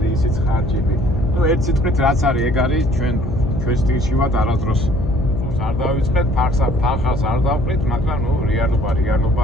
ისიც ხარჯები. ნუ ერთ სიტყვით რაც არის, ეგ არის ჩვენ სტილში ვართ არასდროს. არ დავიწყეთ, ფარხას არ დავყრით, მაგრამ ნუ რეალობა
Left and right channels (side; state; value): left; noise; hum, 5 dB below the sound